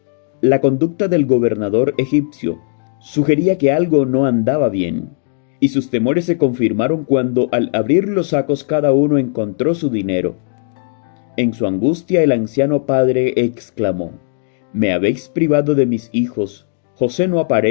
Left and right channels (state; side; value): silent; right; digital silence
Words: La conducta del gobernador egipcio sugería que algo no andaba bien, y sus temores se confirmaron cuando al abrir los sacos cada uno encontró su dinero. En su angustia el anciano padre exclamó: «Me habéis privado de mis hijos. José no